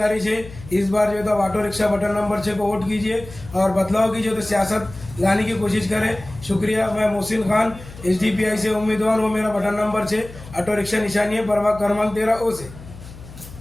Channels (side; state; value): left; noise; hum, 16 dB below the sound